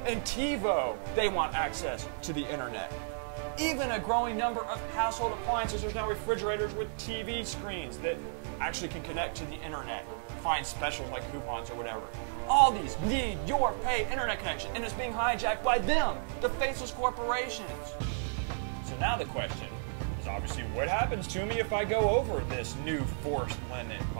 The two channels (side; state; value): left; silent; digital silence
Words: and TiVo, they want access to the internet. Even a growing number of household appliances. There's now refrigerators with TV screens that actually can connect to the internet, find specials like coupons or whatever. All these need your paid internet connection, and it's being hijacked by them, the faceless corporations. So now the question is obviously, what happens to me if I go over this new forced limit